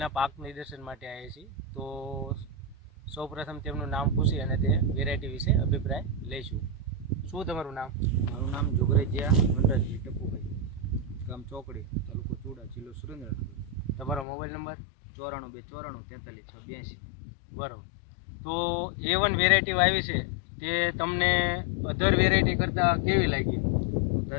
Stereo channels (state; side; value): drops out; right; at 14.2 s